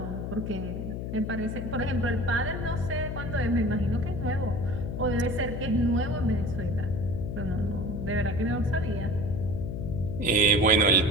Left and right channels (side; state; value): left; noise; hum, 4 dB below the sound